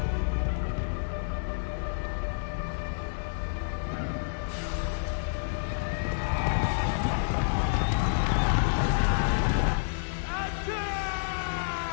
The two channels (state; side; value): silent; right; digital silence